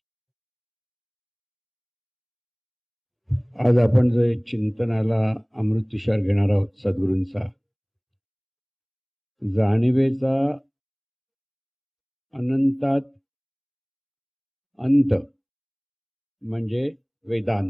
आज आपण जो चिंतनाला अमृत तुषार घेणार आहोत सद्गुरूंचा जाणीवेचा अनंतात अंत म्हणजे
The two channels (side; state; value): both; identical; correlation 1.00